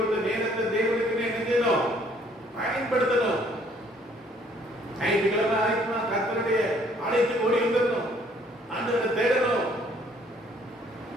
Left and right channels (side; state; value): both; normal; correlation 0.62